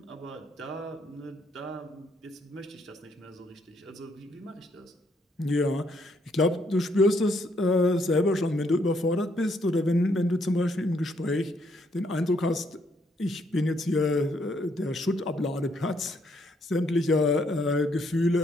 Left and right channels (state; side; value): normal; both; correlation 0.71